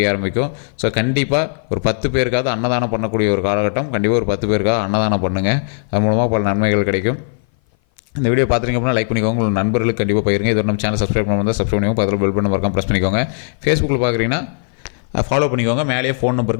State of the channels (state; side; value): silent; right; 57 dB below the other